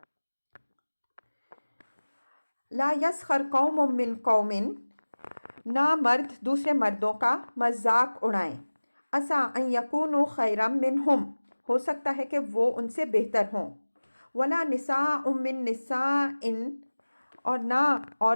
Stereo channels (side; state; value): both; inverted; correlation -1.00